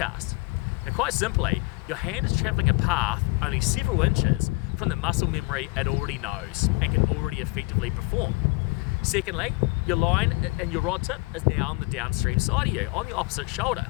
Now quite simply, your hand is travelling a path only several inches from the muscle memory it already knows and can already effectively perform. Secondly, your line and your rod tip is now on the downstream side of you, on the opposite shoulder.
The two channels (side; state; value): right; quieter; 25.0 dB